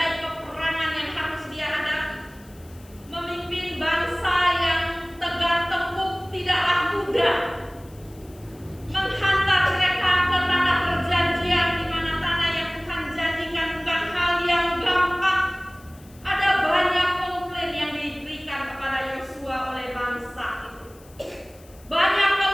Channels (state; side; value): noise; left; hiss, 26 dB below the sound